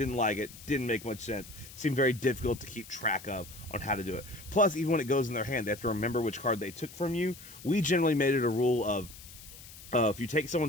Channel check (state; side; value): noise; left; hiss, 17 dB below the sound